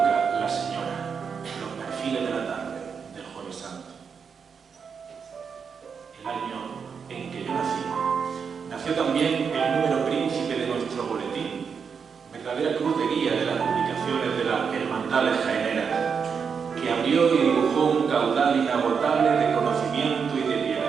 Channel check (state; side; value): quieter; left; 6.3 dB